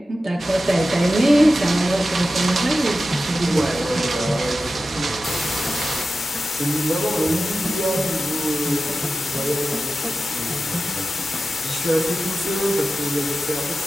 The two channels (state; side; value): normal; both; correlation 0.93